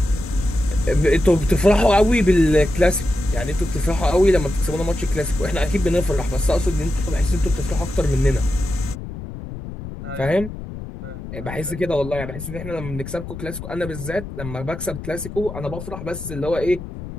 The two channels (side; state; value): left; noise; rumble, 10 dB below the sound